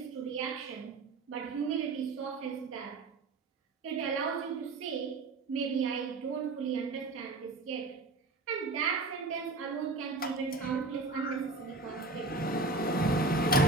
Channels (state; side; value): quieter; left; 3.4 dB